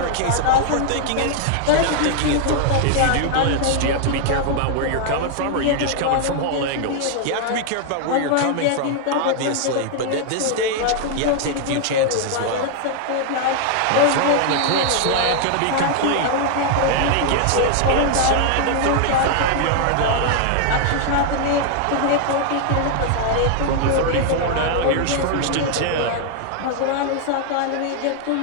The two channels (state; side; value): different; both; correlation 0.00